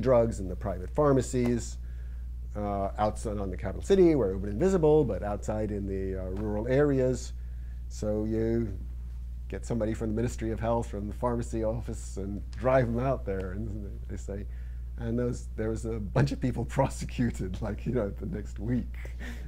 in the private pharmacies outside on the capital city where it would be invisible, but outside in the rural areas. So you get somebody from the Ministry of Health, from the pharmacy office, and drive them out there, and they say, and there was a bunch of people prosecuted, like, you know, the next week.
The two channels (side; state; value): both; identical; correlation 1.00